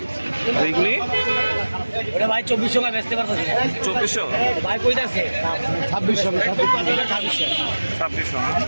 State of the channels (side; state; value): both; inverted; correlation -1.00